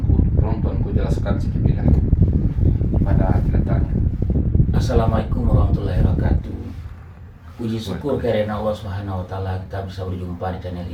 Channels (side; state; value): both; identical; correlation 1.00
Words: Tolong tuanku jelaskan sedikit ya. Di mana letaknya? Assalamualaikum warahmatullahi wabarakatuh. Puji syukur karena Allah Subhanahu wa taala kita bisa berjumpa di channel